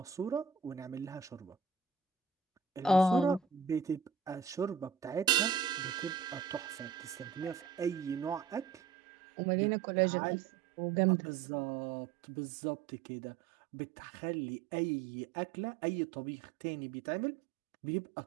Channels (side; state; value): left; drops out; at 8.8 s